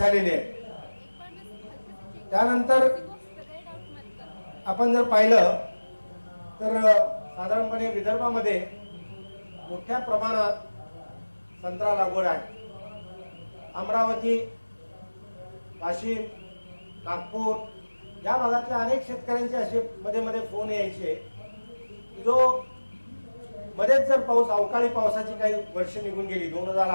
आहे. त्यानंतर आपण जर पाहिलं तर साधारणपणे विदर्भामध्ये मोठ्या प्रमाणात संत्रा लागवड आहे. अमरावती, वाशिम, नागपूर या भागातल्या अनेक शेतकऱ्यांचे असे मध्ये मध्ये फोन यायचे, जो मध्येच जर पाऊस अवकाळी पावसाची काही वर्ष निघून गेली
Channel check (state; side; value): inverted; both; correlation -1.00